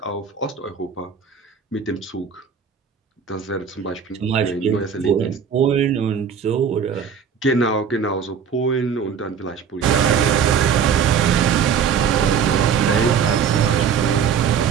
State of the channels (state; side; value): quieter; left; 7.1 dB